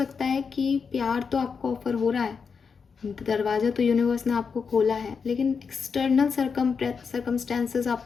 है कि प्यार तो आपको ऑफर हो रहा है, दरवाज़ा तो यूनिवर्स ने आपको खोला है, लेकिन एक्सटर्नल सर्कमस्टेंसेस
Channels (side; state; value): right; quieter; 5.7 dB